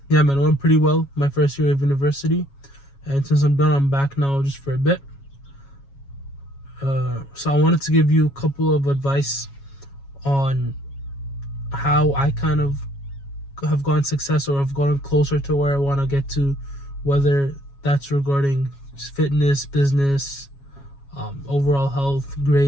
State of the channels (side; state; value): right; late; 7.2 ms